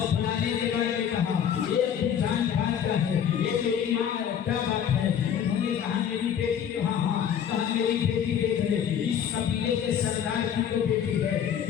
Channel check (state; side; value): quieter; right; 8.8 dB